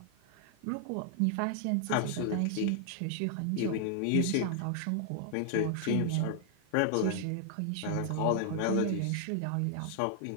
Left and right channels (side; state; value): both; different; correlation -0.01